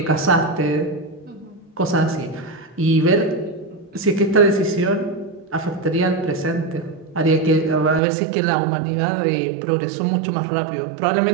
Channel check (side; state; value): left; drops out; at 8.0 s